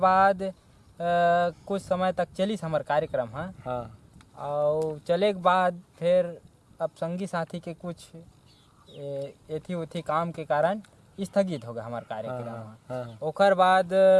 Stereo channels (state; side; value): identical; both; correlation 1.00